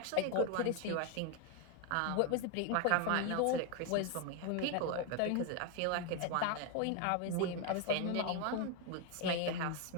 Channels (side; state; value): both; different; correlation 0.01